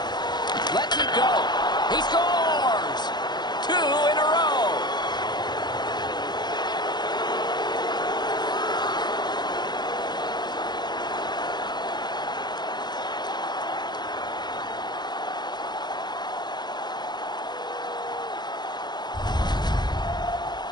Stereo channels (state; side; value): late; right; 0.21 ms